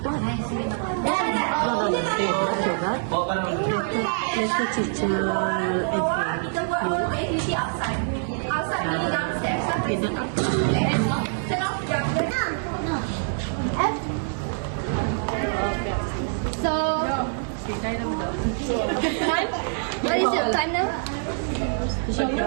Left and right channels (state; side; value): silent; left; 57 dB below the other